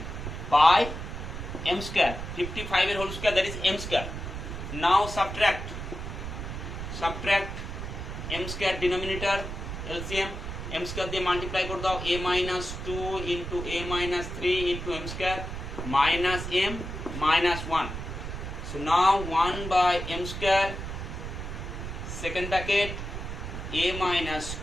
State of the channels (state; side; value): noise; right; rumble, 7 dB below the sound